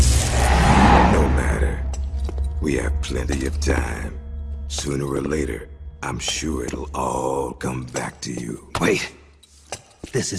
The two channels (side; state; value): both; identical; correlation 1.00